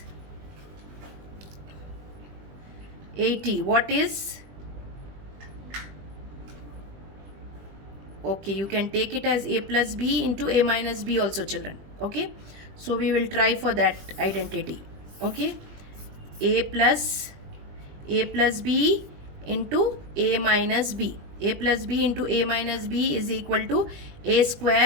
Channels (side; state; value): left; late; 20 ms